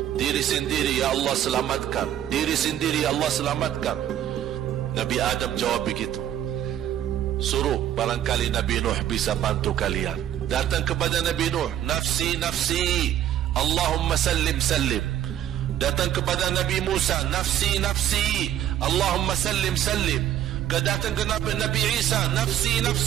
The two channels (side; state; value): left; quieter; 11.3 dB